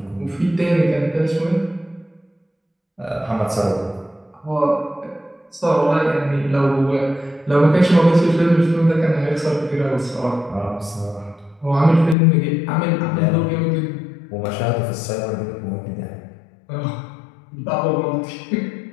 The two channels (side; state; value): right; drops out; at 12.2 s